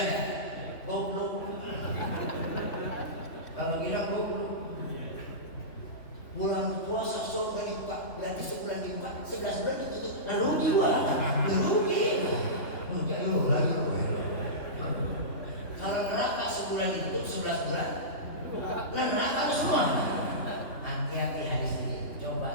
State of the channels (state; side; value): late; right; 3.2 ms